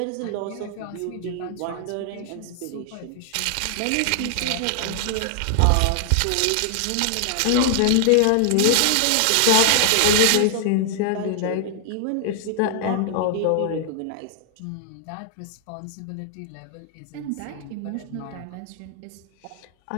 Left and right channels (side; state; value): both; different; correlation -0.01